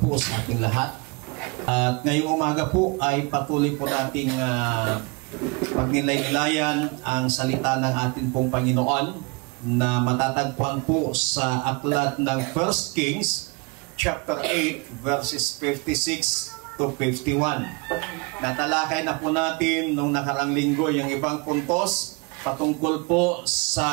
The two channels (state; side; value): quieter; left; 29.4 dB